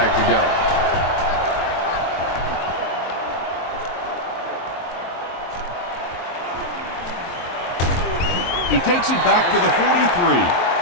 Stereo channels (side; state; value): right; late; 23 ms